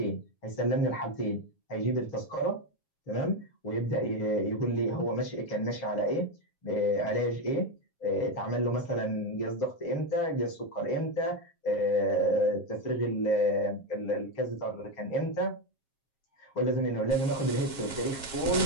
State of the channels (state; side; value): late; right; 7.4 ms